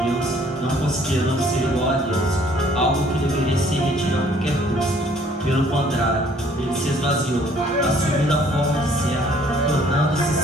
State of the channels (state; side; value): normal; both; correlation 0.60